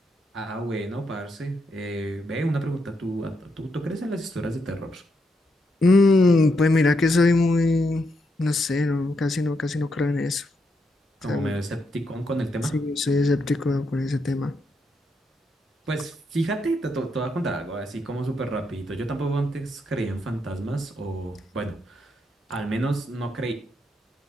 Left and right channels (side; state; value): both; normal; correlation 0.80